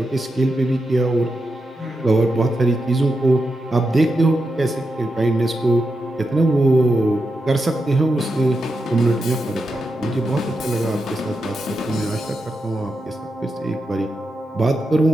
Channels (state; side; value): normal; both; correlation 0.87